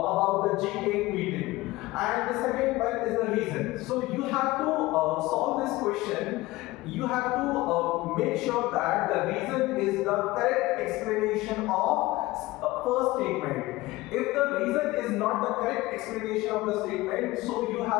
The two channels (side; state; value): right; quieter; 19.3 dB